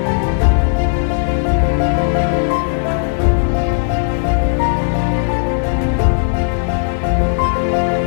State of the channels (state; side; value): silent; right; 59 dB below the other